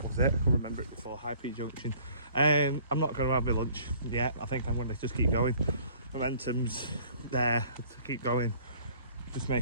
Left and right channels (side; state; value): both; inverted; correlation -0.55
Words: was it, I remember it before, High Peak Junction. I'm not going to have my lunch yet. I think I'm going to just keep going. Momentum's there to keep going. Just